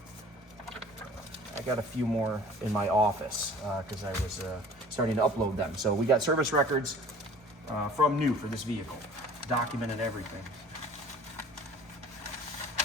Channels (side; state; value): both; normal; correlation 0.48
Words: I got a few more in my office because I was starting to upload them. So we got service records from new for this vehicle, documented everything.